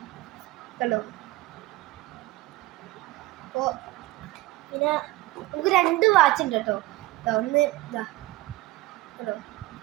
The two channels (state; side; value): quieter; left; 18.2 dB